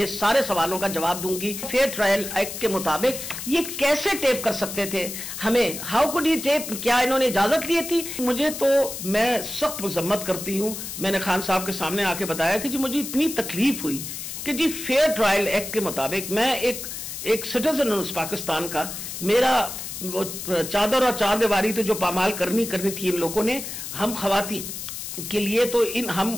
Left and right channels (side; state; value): left; noise; hiss, 8 dB below the sound